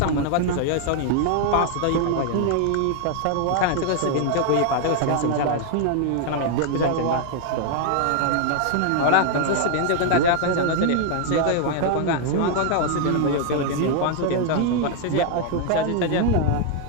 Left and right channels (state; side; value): different; both; correlation 0.00